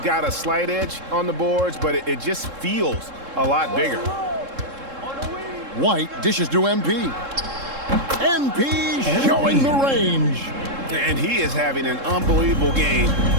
got a slight edge on the boards, but it just feels a lot bigger. White dishes to MP. MP showing the range. And he is having an unbelievable game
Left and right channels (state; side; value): late; left; 3.7 ms